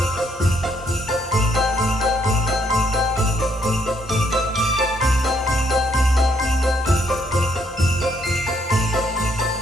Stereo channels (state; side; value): normal; both; correlation 0.71